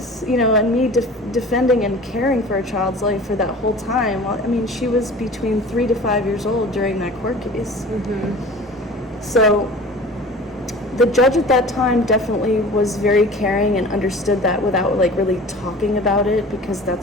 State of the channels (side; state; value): both; normal; correlation 0.41